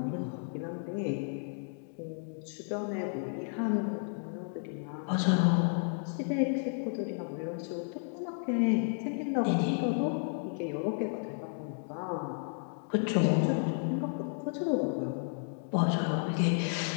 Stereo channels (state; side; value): silent; right; 56 dB below the other